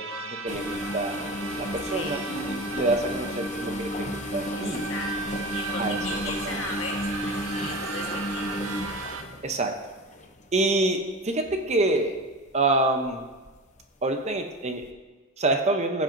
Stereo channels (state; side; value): normal; both; correlation 0.29